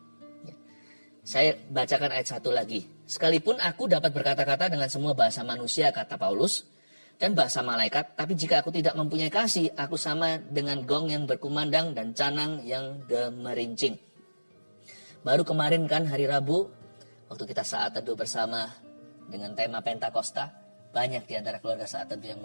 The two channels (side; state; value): both; inverted; correlation -1.00